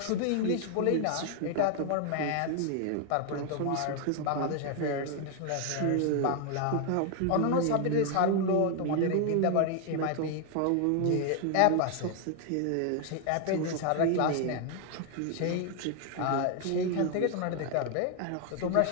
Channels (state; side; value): different; both; correlation 0.00